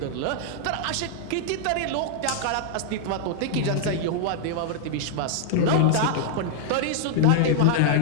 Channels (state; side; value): different; both; correlation -0.01